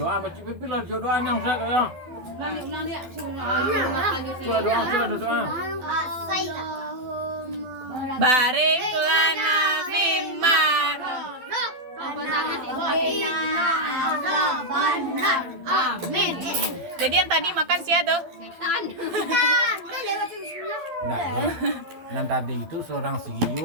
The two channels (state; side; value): late; left; 12 ms